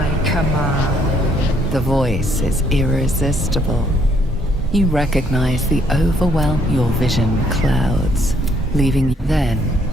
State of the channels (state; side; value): normal; both; correlation 0.67